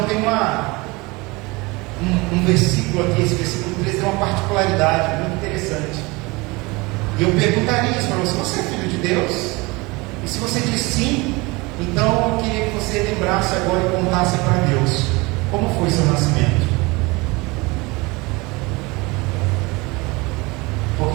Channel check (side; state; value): left; quieter; 24.5 dB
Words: tem um versículo aqui, esse versículo 13 tem uma particularidade muito interessante. E eu perguntaria isso para você: você é filho de Deus? E se você diz sim, então eu queria que você lembrasse agora e contasse para Deus como foi seu nascimento.